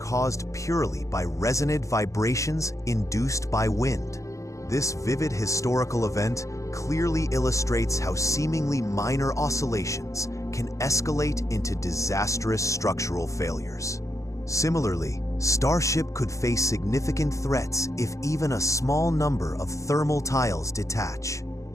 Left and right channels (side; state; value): right; late; 0.15 ms